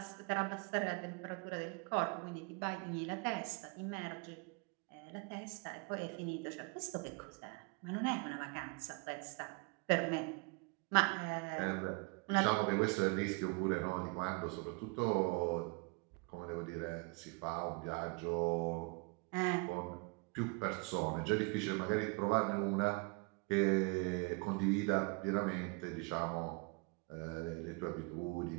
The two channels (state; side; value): quieter; left; 30.8 dB